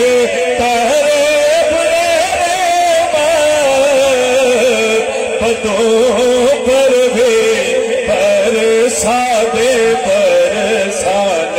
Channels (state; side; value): identical; both; correlation 1.00